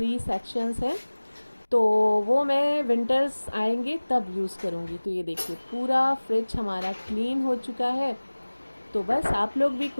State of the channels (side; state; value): both; inverted; correlation -1.00